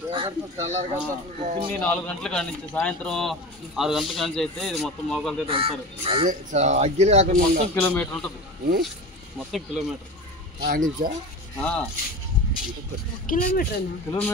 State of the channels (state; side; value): normal; both; correlation 0.31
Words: పొద్దున్నే 4 గంటల కాడి నుంచి సాయంత్రం 6 గంటల కాడి నుంచి అయితే ఇది మొత్తం మోకాలతో వెళ్తారు. మొత్తం కిలోమీటర్ ఉంటుంది. మొత్తం కిలోమీటర్